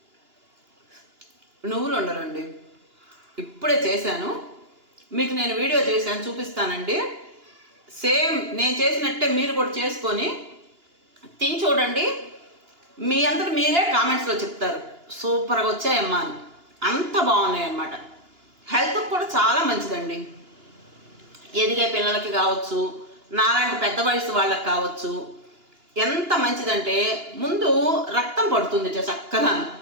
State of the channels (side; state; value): left; late; 2.9 ms